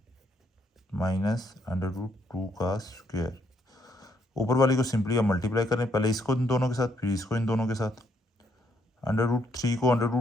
माइनस अंडर रूट 2 का स्क्वायर। ऊपर वाली को सिंपली आप मल्टीप्लाई करें, पहले इसको इन दोनों के साथ फिर इसको इन दोनों के साथ। अंडर रूट 3 को अंडर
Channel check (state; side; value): normal; both; correlation 0.73